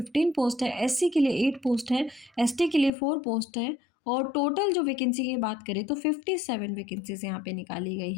पोस्ट है, एससी के लिए 8 पोस्ट है, एसटी के लिए 4 पोस्ट है, और टोटल जो वैकेंसी की बात करें तो 57 वैकेंसीज यहाँ पे निकाली गई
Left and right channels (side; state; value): right; drops out; at 2.9 s